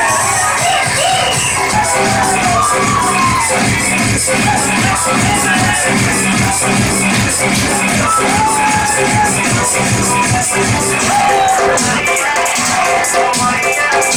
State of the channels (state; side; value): identical; both; correlation 1.00